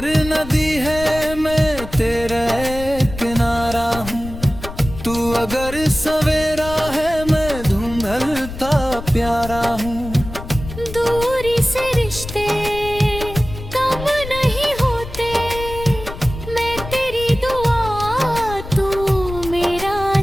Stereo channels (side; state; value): left; noise; rumble, 11 dB below the sound